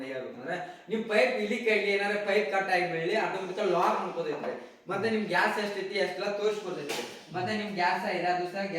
ಹೇಳ್ಬೇಕಂದ್ರೆ, ನಿಮ್ ಪೈಪ್ ಇಲ್ಲಿ ಕೈಲಿ ಏನಾರ ಪೈಪ್ ಕಟ್ ಆಗಿ ಬೆಳಿ ಅದಕ್ಕೆ ಲಾಕ್ ಮಾಡ್ಕೋದೈತ್ರಿ. ಮತ್ತೆ ನಿಮ್ ಗ್ಯಾಸ್ ಎಷ್ಟೈತಿ ಅಷ್ಟೆಲ್ಲ ತೋರಿಸ್ಕೊತೈತಿ. ಮತ್ತೆ ನಿಮ್ ಗ್ಯಾಸ್ 5 ದಿವಸ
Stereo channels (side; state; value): both; identical; correlation 1.00